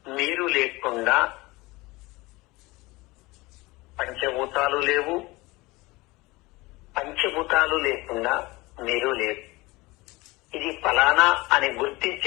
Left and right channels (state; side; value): quieter; right; 22.1 dB